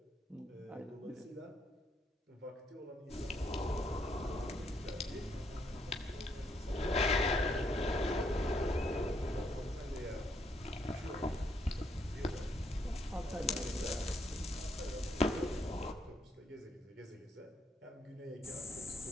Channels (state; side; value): normal; both; correlation 0.73